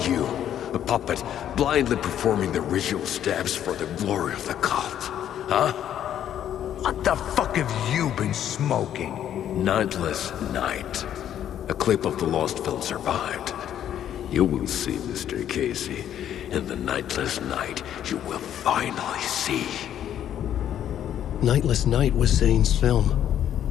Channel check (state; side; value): quieter; right; 10.5 dB